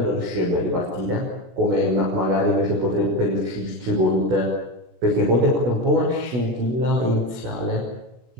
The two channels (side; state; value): left; late; 17 ms